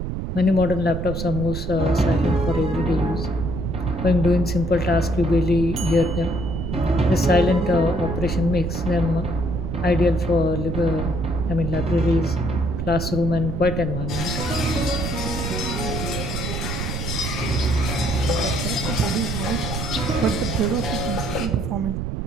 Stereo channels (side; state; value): right; noise; rumble, 4 dB below the sound